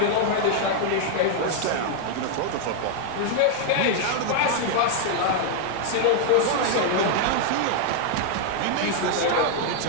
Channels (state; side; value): different; both; correlation 0.00